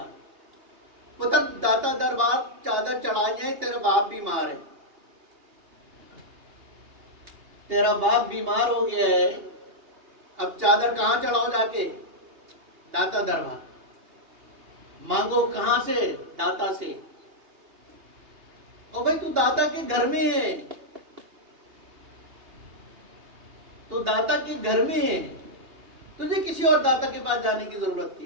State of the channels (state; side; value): late; left; 2.8 ms